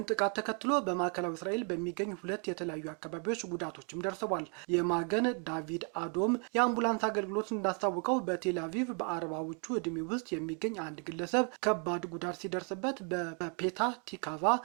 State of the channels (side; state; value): left; quieter; 38.4 dB